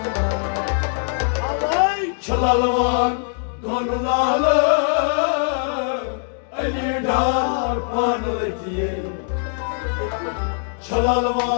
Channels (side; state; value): right; silent; 61 dB below the other